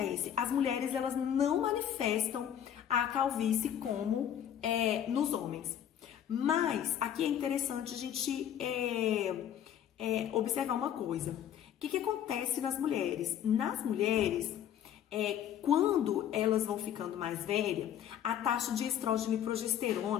As mulheres, elas não manifestam a calvície como nos homens. Mas, aqui é interessante a gente observar uma coisa. O que acontece nas mulheres? Nas mulheres, quando elas vão ficando mais velhas, a taxa de estrógeno e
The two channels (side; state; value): right; quieter; 10.0 dB